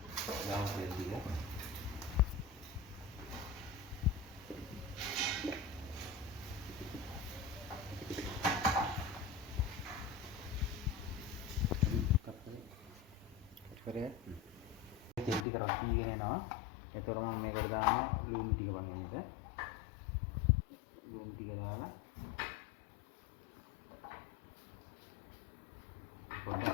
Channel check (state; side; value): drops out; right; at 15.5 s